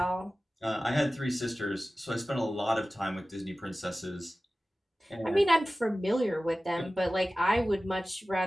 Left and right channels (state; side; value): normal; both; correlation 0.96